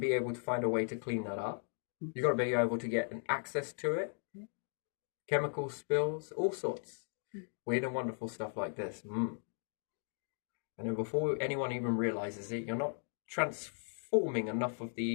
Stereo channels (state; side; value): silent; right; 53 dB below the other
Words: able to find a way to clean that up. You've got to be able to get an access to it. Chemical spills, all sorts. Weird and wonderful stuff like this. And then before anyone even realizes it, you're not transforming enough of